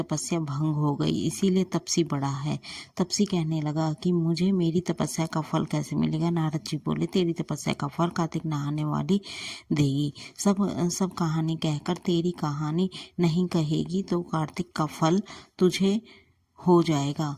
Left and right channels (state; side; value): identical; both; correlation 1.00